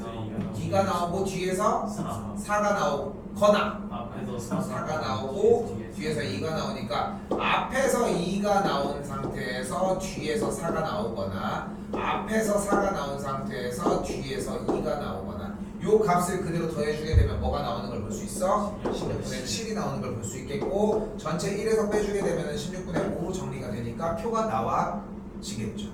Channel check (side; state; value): both; identical; correlation 1.00